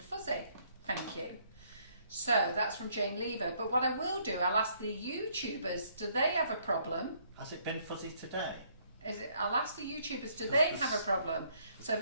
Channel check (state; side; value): inverted; both; correlation -0.67